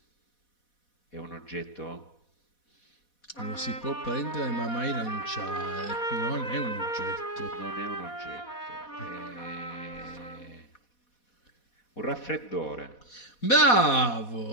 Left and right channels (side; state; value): right; late; 4.1 ms